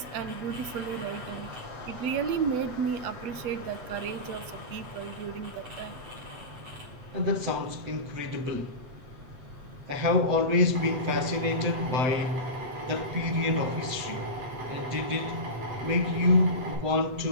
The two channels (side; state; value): left; late; 8.0 ms